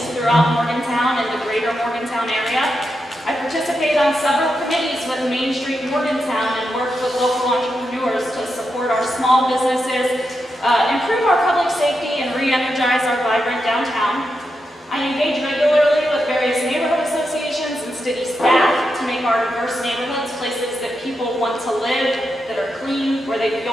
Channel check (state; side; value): normal; both; correlation 0.86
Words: throughout Morgantown and the greater Morgantown area. I participate on several committees with Main Street Morgantown and work with local entrepreneurs to support our small businesses, improve our public safety, and re-energize our vibrant downtown. I engage regularly with various neighborhood associations and city staff to make our diverse neighborhoods places that people want to live, that are clean, where they